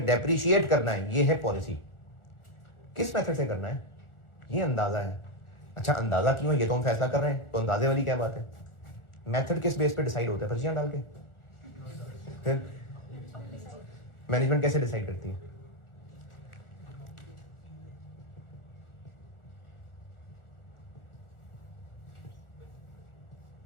डेप्रिशिएट करना है, ये है पॉलिसी। किस मेथड से करना है? ये अंदाजा है। अच्छा अंदाजा क्यों है ये तो हम फैसला कर रहे हैं, तो अंदाजे वाली क्या बात है? मेथड किस बेस पे डिसाइड होता है? पर्चियां डाल के। फिर मैनेजमेंट कैसे डिसाइड करती है?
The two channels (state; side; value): late; right; 1.4 ms